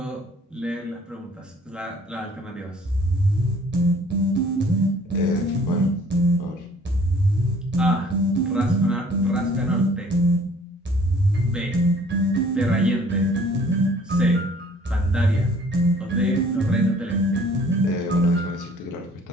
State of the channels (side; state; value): both; normal; correlation 0.55